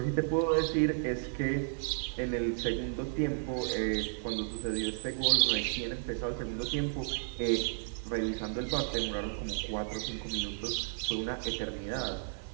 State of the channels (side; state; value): left; silent; digital silence